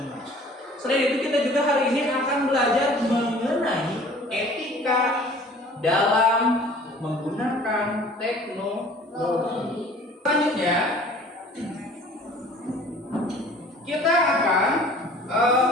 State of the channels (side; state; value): both; normal; correlation 0.49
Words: Selain itu kita juga hari ini akan belajar mengenai etika dalam menggunakan teknologi. Selanjutnya kita akan